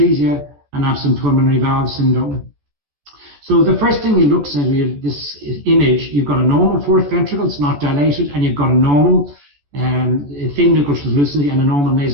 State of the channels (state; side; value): late; left; 14 ms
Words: and absent pulmonary valve syndrome. So the first thing you look at this image, you've got a normal 4th ventricle, it's not dilated, and you've got a normal thin nuchal translucency and a normal